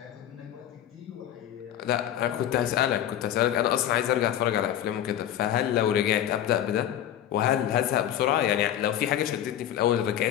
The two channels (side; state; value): right; quieter; 11.1 dB